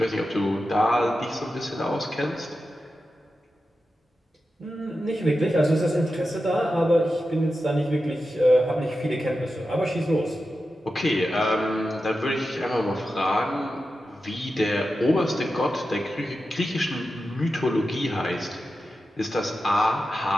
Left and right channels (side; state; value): both; normal; correlation 0.91